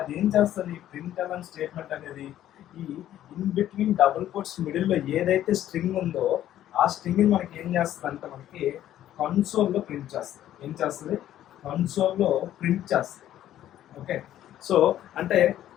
ఏం చేస్తుంది, ప్రింట్ ఎల్ఎన్ స్టేట్మెంట్ అనేది ఈ ఇన్ బిట్వీన్ డబుల్ కోట్స్ మిడిల్లో ఏదైతే స్ట్రింగ్ ఉందో ఆ స్ట్రింగ్ని మనకి ఏం చేస్తుంది అంటే మనకి కన్సోల్లో ప్రింట్ చేస్తుంది. ఏం చేస్తుంది, కన్సోల్లో ప్రింట్ చేస్తుంది. ఓకే, సో అంటే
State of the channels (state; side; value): quieter; right; 12.2 dB